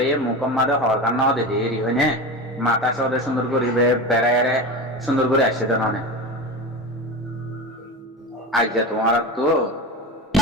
মুকম্মাদে হওয়ার কারণ দে দেরি হয় না মাথা সদে সুন্দর করে বেড়ায় সুন্দর করে আসছে তো ননে আজ তোমার তো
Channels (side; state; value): both; normal; correlation 0.26